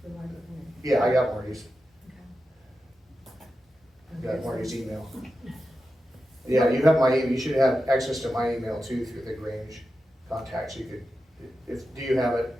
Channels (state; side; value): normal; both; correlation 0.91